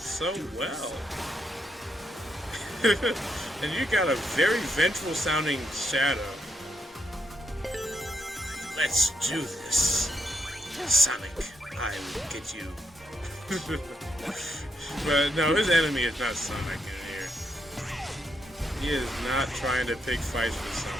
well. And you got a very vengeful sounding Shadow. Let's do this. Sonic, I will get you. But no, his enemy is not Sonic in here. He is not trying to pick fights with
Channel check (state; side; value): normal; both; correlation 0.77